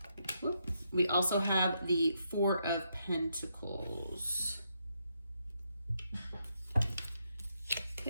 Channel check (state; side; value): inverted; both; correlation -0.79